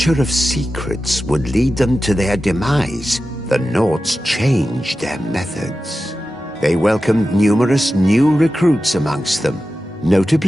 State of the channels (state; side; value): normal; both; correlation 0.93